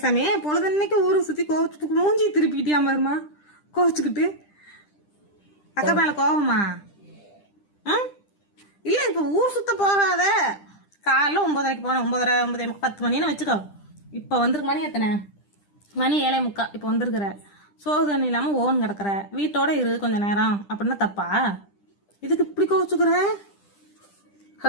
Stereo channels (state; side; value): late; right; 10 ms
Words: பொழுதன்னைக்கு ஊரை சுத்தி கோவச்சுட்டு மூஞ்சி திருப்பிக்கிட்டியா பாருமா கோவச்சுக்கிட்டு. அக்கா மேல கோவமா? இல்ல இப்ப ஊர் சுத்த போகாத. காலைல 9:30 போனேன், 9:30 10 மணின்னு வச்சுக்கோ. இப்ப வந்திருக்கு மணி எத்தனை? மணி 7:45. இப்ப வந்திருக்கிற சோறு தண்ணி இல்லாம ஓன் கிடக்குற, வீட்டோட இரு கொஞ்ச நேரம் அப்படின்னா தப்பா? இதுக்கு இப்படி கோவச்சுக்குற?